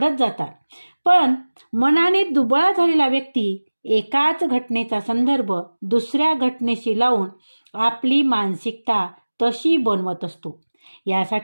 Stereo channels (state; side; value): inverted; both; correlation -1.00